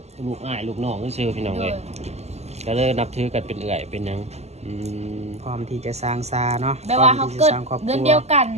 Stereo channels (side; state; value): left; late; 0.32 ms